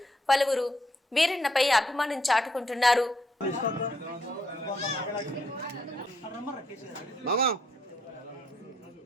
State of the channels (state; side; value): normal; both; correlation 0.73